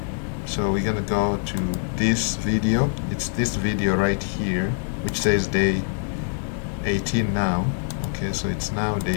So we're gonna go to this video. It's this video right here, which says day 18 now. Okay, so it's now day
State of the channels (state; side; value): silent; right; digital silence